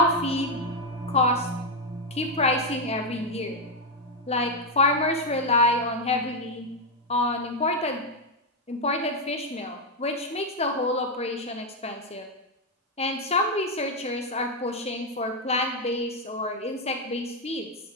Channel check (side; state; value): both; normal; correlation 0.04